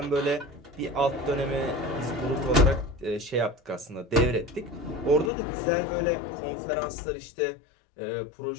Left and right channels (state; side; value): drops out; right; at 5.3 s